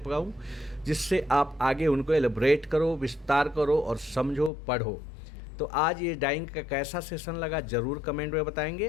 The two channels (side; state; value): right; drops out; at 4.5 s